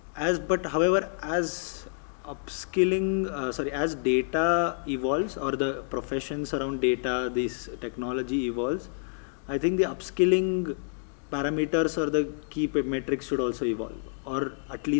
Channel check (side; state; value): right; silent; digital silence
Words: however, as as data evolves, or the professions around data, this technology evolves, I think the upskilling parameters or the key metrics should also evolve, or at